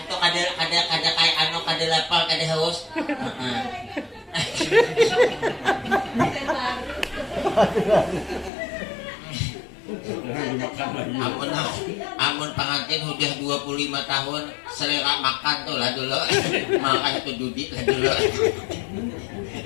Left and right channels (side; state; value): right; drops out; at 8.5 s